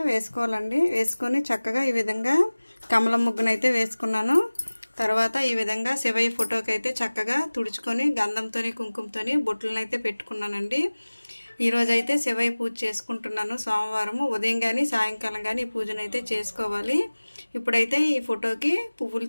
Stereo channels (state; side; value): inverted; both; correlation -1.00